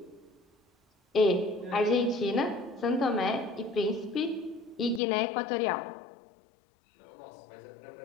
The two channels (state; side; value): drops out; right; at 5.0 s